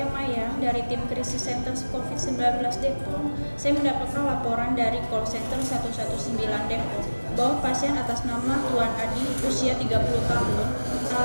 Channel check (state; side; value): inverted; both; correlation -1.00